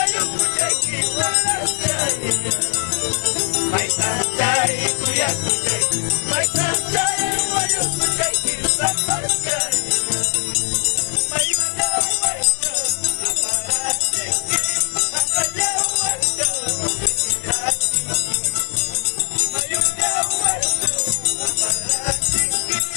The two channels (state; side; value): silent; right; digital silence